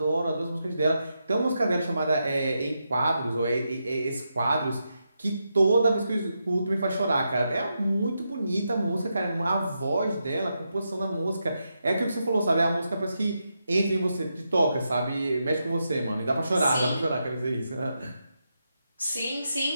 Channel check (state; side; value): inverted; both; correlation -0.85